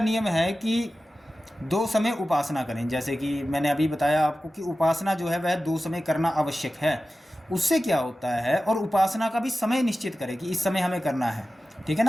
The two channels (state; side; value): normal; both; correlation 0.95